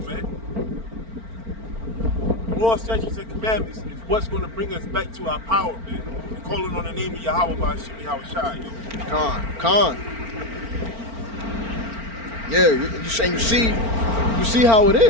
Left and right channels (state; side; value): late; left; 4.4 ms